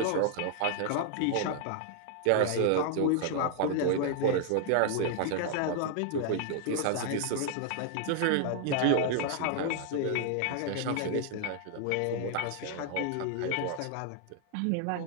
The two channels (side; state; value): both; different; correlation 0.00